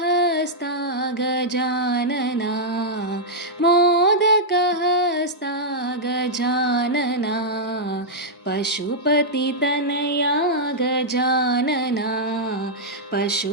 गजानना मोदकहस्ता गजानना पशुपतितनया गजानना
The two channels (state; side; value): normal; both; correlation -0.07